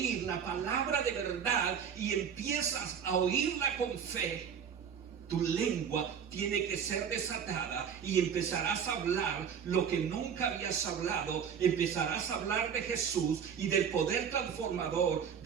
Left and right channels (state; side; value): quieter; left; 7.5 dB